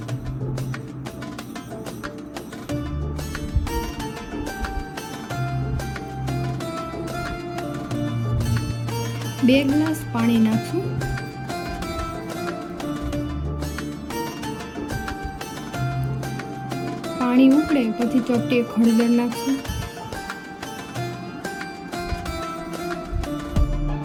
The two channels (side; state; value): both; identical; correlation 1.00